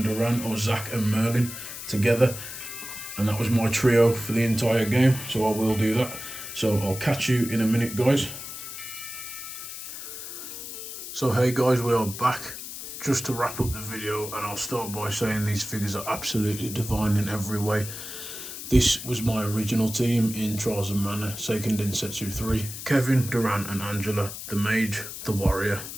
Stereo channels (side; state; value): left; noise; hiss, 9 dB below the sound